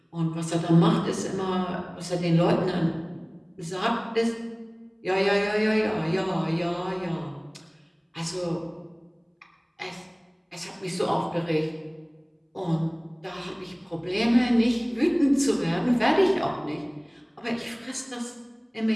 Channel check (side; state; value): both; identical; correlation 1.00